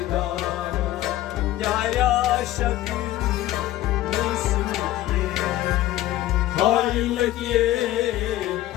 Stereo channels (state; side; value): quieter; right; 14.7 dB